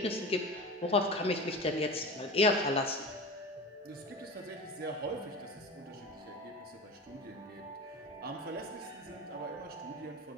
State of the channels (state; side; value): normal; both; correlation 0.30